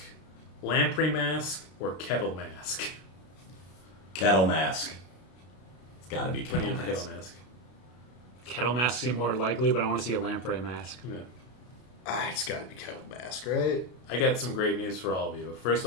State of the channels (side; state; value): right; late; 32 ms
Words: Lamprey Mask, or Kettle Mask? Kettle Mask. It's got to be What do Kettle you Mask. Kettle Mask? Kettle Mask seem more likely, but I want to see a Lamprey Mask. Yeah. It's got to be Kettle Mask, right? I got some great news for all of you. First